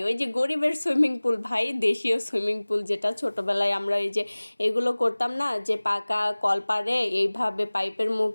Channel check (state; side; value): inverted; both; correlation -1.00